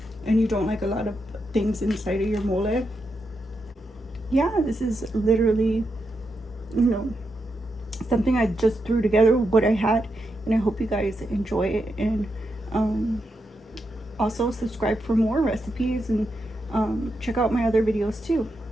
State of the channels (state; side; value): normal; both; correlation 0.85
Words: and you don't like a lot of things inside of your mole, yeah, this is literally, something I just threw together with what I had, and I hope you guys enjoy it. And also subscribe for more recipes, and check out my other videos too.